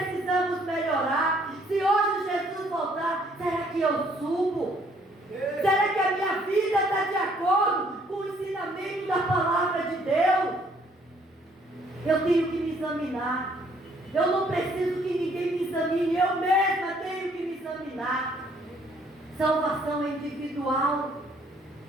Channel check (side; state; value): both; normal; correlation 0.64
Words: Eu tenho que me examinar. Eu não preciso que ninguém me examine. Eu mesma tenho que me examinar. Salvação é individual.